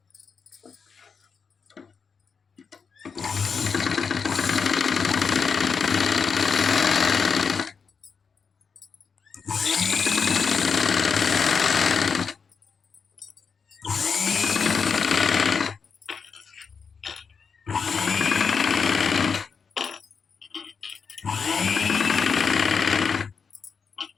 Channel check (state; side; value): quieter; right; 5.7 dB